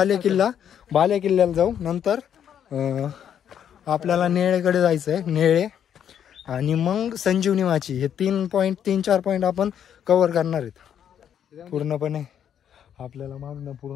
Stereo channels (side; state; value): right; quieter; 9.1 dB